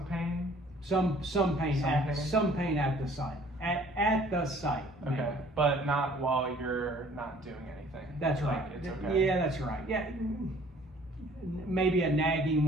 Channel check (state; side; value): normal; both; correlation 0.55